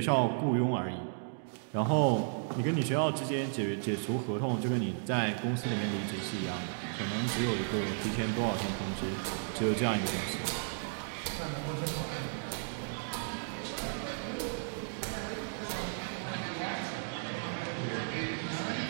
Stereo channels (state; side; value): silent; left; digital silence